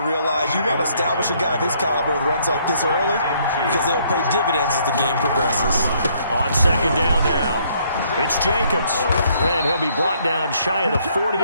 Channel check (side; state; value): both; inverted; correlation -0.67